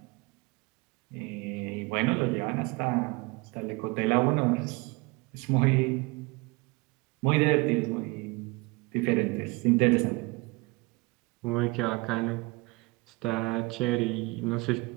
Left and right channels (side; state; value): left; quieter; 25.7 dB